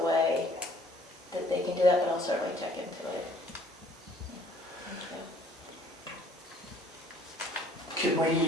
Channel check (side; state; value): both; normal; correlation 0.57